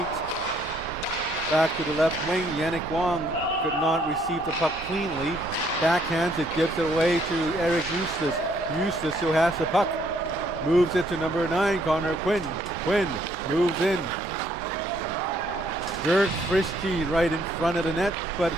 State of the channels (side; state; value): both; normal; correlation 0.67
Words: Back to the left wing. Yannick Wong could not receive the puck cleanly. Backhands it, gives it away to Eric Eustace. Eustace, who has the puck, moves it to number 9, Connor Quinn. Quinn moves in. Jerks Frisky right in front of the net, but